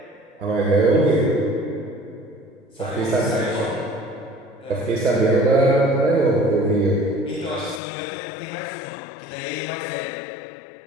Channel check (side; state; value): right; drops out; at 7.8 s